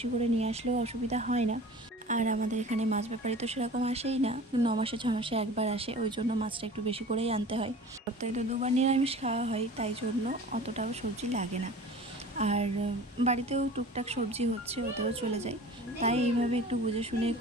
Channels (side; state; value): both; normal; correlation 0.41